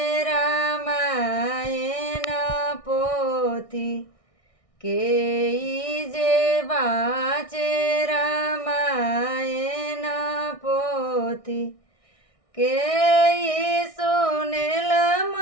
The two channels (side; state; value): right; late; 1.6 ms